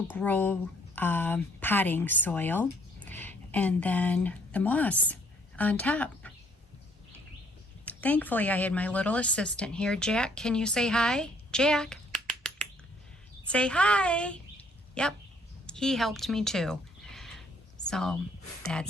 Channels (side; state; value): both; normal; correlation 0.65